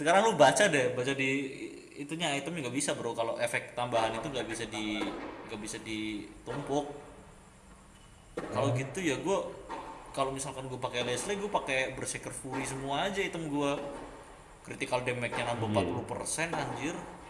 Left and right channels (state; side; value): identical; both; correlation 1.00